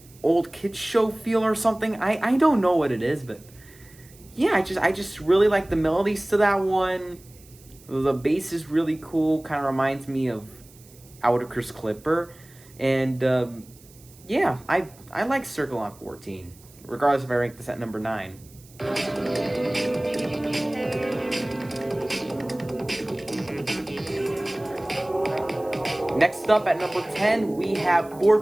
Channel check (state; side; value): noise; right; hiss, 25 dB below the sound